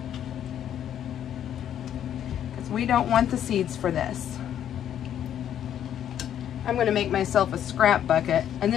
because we don't want the seeds for this. I'm going to make myself a scrap bucket, and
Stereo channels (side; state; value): right; quieter; 10.1 dB